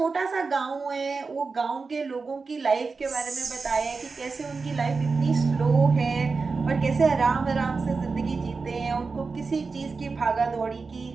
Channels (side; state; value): left; quieter; 4.4 dB